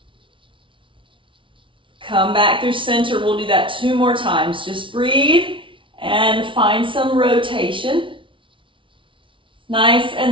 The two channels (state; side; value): late; left; 0.25 ms